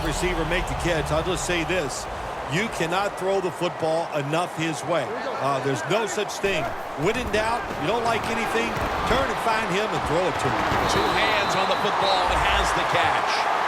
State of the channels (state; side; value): identical; both; correlation 1.00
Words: receiver make the catch, I'll just say this. You cannot throw the football enough his way. There's no such thing. When in doubt, you don't like anything, turn and find him and throw it to him. 2 hands on the football and has the catch.